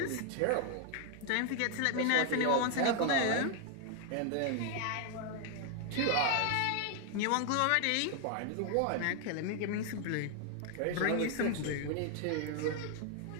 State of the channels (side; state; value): both; different; correlation 0.00